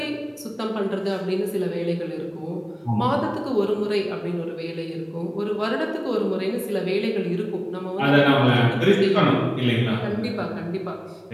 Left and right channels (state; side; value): identical; both; correlation 1.00